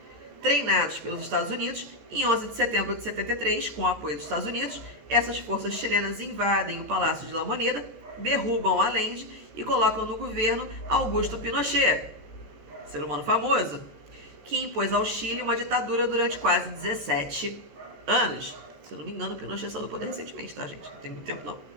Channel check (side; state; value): left; late; 14 ms